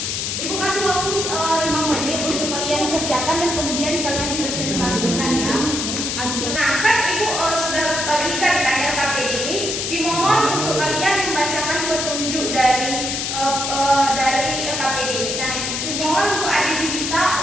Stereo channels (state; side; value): noise; left; hiss, 2 dB below the sound